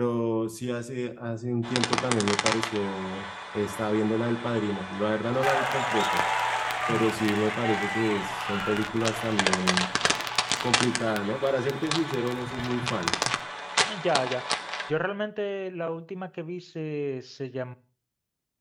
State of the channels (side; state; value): both; identical; correlation 1.00